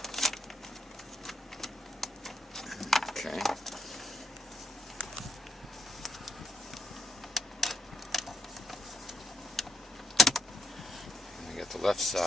Okay. We got the left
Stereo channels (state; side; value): normal; both; correlation 0.74